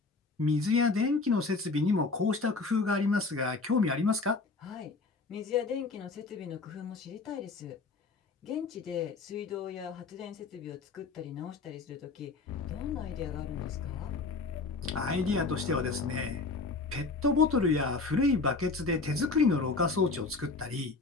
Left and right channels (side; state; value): right; quieter; 3.9 dB